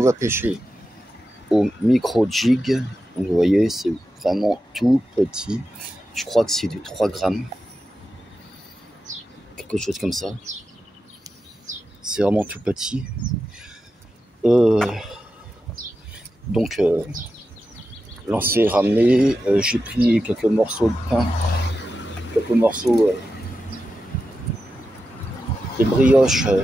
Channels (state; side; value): normal; both; correlation 0.90